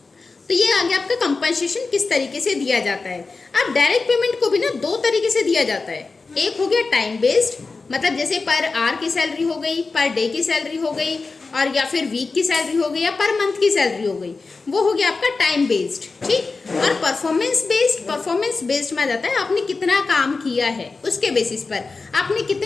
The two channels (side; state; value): right; quieter; 4.1 dB